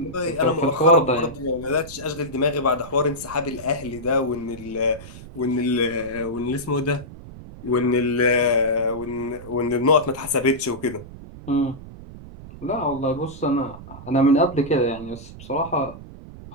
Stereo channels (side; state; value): right; noise; rumble, 15 dB below the sound